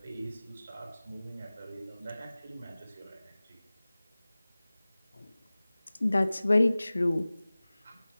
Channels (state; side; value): inverted; both; correlation -0.98